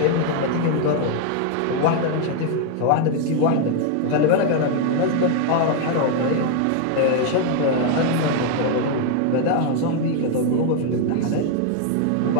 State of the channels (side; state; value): both; different; correlation 0.00